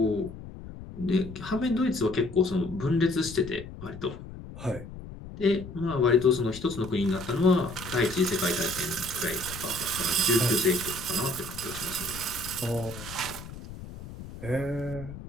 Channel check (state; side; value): noise; left; rumble, 13 dB below the sound